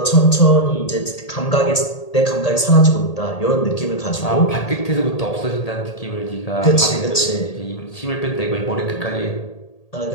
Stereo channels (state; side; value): late; right; 1.8 ms